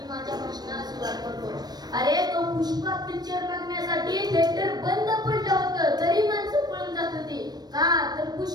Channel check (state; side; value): late; left; 0.19 ms